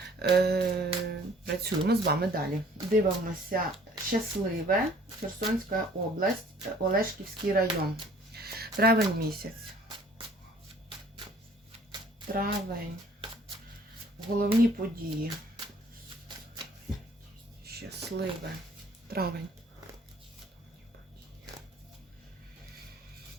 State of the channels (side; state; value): both; normal; correlation 0.55